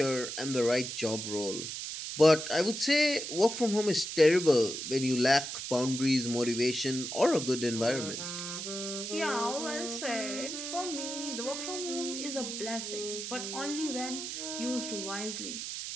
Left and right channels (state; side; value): noise; right; hiss, 6 dB below the sound